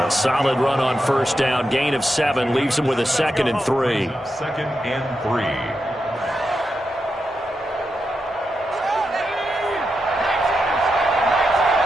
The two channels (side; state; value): both; normal; correlation 0.87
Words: A solid run on 1st down. Gain of 7 leaves him with a 2nd and 3. 2nd and 3.